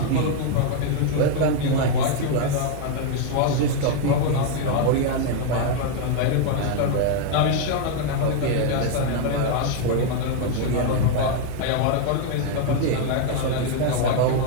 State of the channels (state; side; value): different; both; correlation 0.01